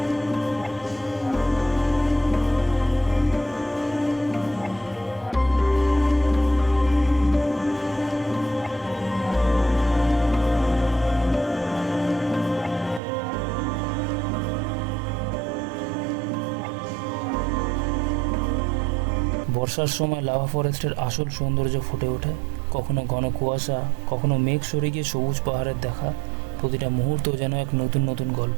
বর্ষার সময় লাভা ফরেস্টের আসল সৌন্দর্য ফুটে ওঠে। কখনো ঘন কুয়াশা, কখনো মেঘ সরে গিয়ে সবুজ পাহাড়ের দেখা। প্রতিটা মুহূর্ত যেন এক নতুন নতুন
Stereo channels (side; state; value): left; drops out; at 13.0 s